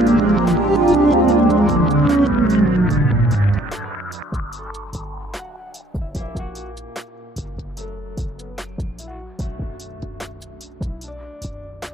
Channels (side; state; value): both; normal; correlation 0.62